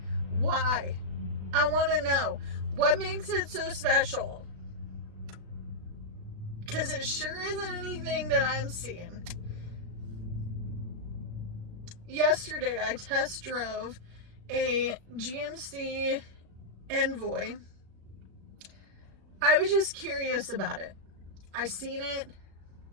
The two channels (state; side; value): late; left; 36 ms